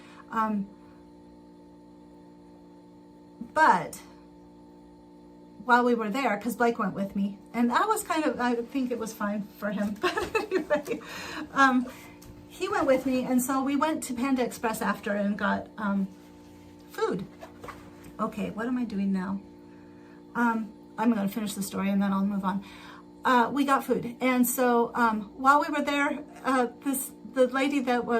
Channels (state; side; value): identical; both; correlation 1.00